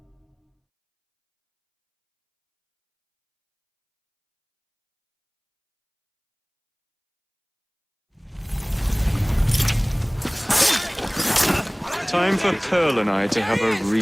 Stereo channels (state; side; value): identical; both; correlation 1.00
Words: Time for Pearl and I to have a